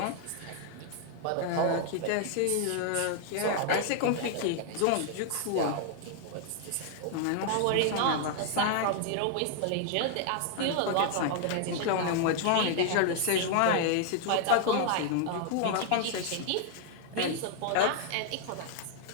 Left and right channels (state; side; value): different; both; correlation 0.00